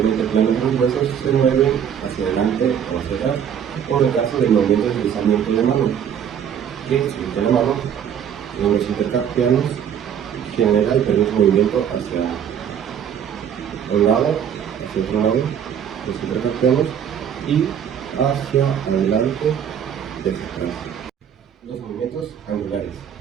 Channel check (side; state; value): left; quieter; 8.6 dB